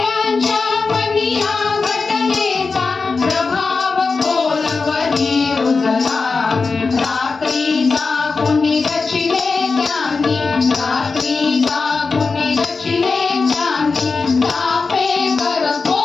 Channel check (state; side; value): quieter; right; 4.4 dB